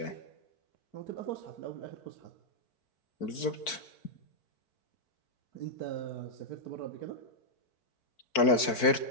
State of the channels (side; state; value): right; late; 4.5 ms